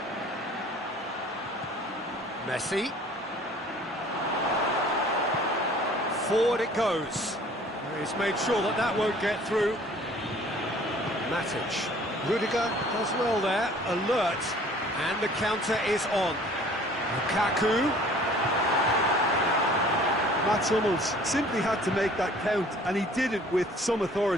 Messi. Forward it goes. He's made sure that that won't get through. Matic. Rudiger does well there. Alert. And the counter is on. Lukaku. Mats Hummels simply had to make that count, and he did it with some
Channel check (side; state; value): both; normal; correlation 0.52